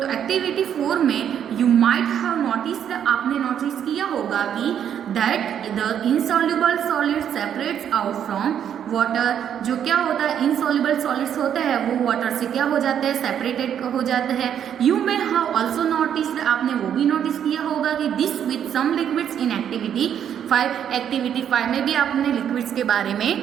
एक्टिविटी 4 में यू माइट हैव नोटिस्ड, आपने नोटिस किया होगा कि that the insoluble solid separates out from water, जो क्या होता है इनसॉल्युबल सॉलिड्स होते हैं वो वाटर से क्या हो जाते हैं, सेपरेटेड हो जाते हैं। You may have also noticed, आपने वो भी नोटिस किया होगा कि this with some liquids in activity 5, activity 5 में भी आपने लिक्विड्स के बारे में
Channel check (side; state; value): left; quieter; 9.1 dB